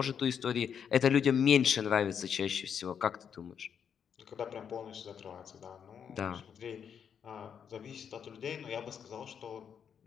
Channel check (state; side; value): quieter; right; 7.7 dB